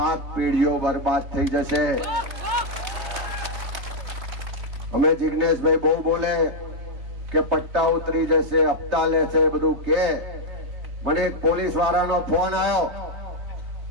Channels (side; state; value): left; late; 3.3 ms